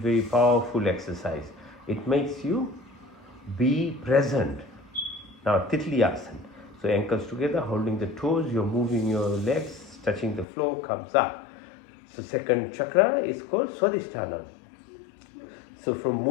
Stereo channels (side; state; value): right; drops out; at 10.5 s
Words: powerful exercise. It makes you be present. Now Titli Asana. So ankles together, holding the toes, you're moving your legs, touching the floor, comes up. So second chakra is called Swadhisthana. So from